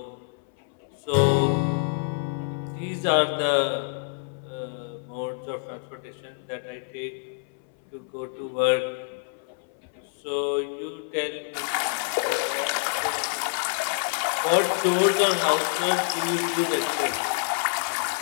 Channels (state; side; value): silent; right; 60 dB below the other